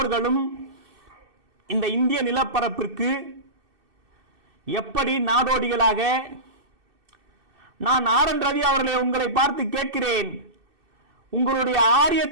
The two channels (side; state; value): left; late; 2.6 ms